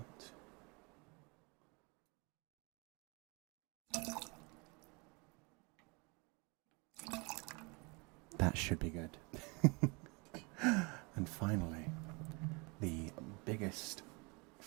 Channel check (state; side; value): quieter; left; 29.3 dB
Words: That should be good. And finally, the biggest